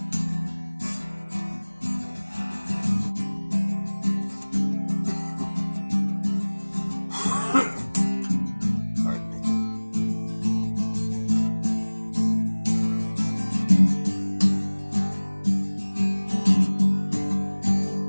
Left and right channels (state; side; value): inverted; both; correlation -1.00